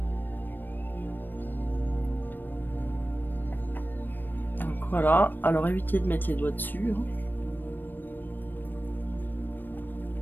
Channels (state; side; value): late; right; 0.092 ms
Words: Donc voilà. Alors évitez de mettre les doigts dessus.